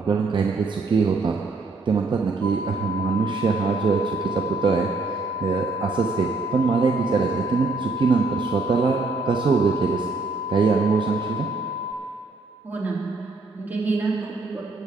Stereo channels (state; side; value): quieter; left; 3.5 dB